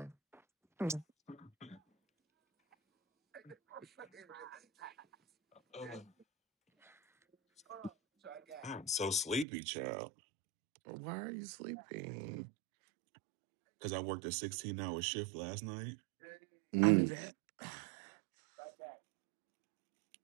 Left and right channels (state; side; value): drops out; left; at 9.5 s